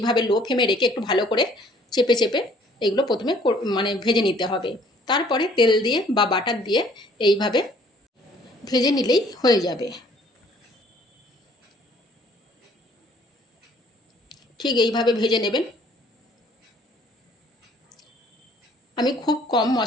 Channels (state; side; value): normal; both; correlation 0.58